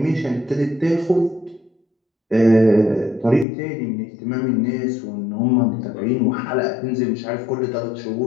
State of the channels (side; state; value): right; drops out; at 3.5 s